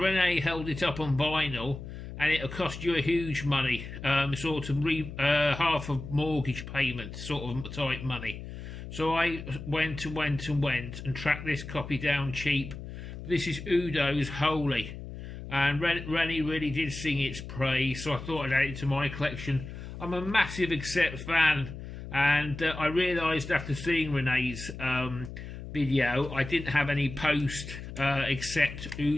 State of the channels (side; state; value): left; noise; hum, 10 dB below the sound